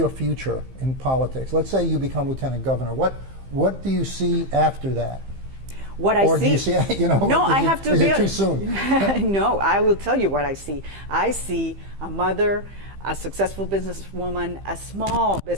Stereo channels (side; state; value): left; late; 15 ms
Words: future in politics? Let's say you become lieutenant governor. What do you see after that? What I or see, do you see, you know, no, I have to is be it too soon? No, I will tell you what I see. I see a mother, a successful businesswoman, a small